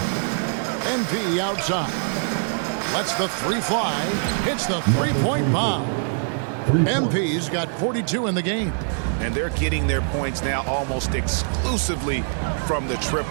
MP outside. Lets the 3 fly. Hits the 3-point bomb. MP's got 42 in the game. And they're getting their points now almost exclusively from the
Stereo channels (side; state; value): left; silent; 61 dB below the other